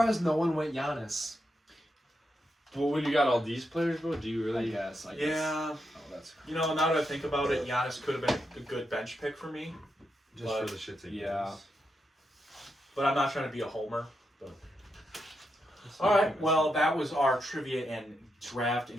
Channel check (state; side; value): normal; both; correlation 0.84